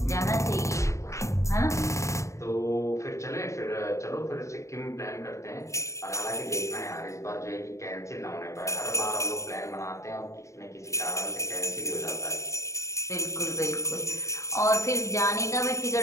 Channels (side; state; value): right; late; 0.15 ms